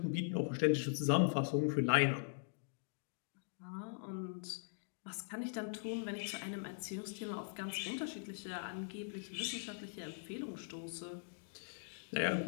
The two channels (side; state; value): right; silent; digital silence